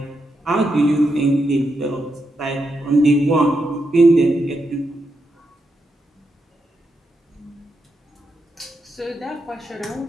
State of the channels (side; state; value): both; normal; correlation 0.84